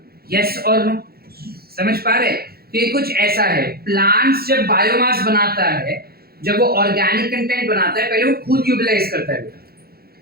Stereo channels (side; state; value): left; late; 0.45 ms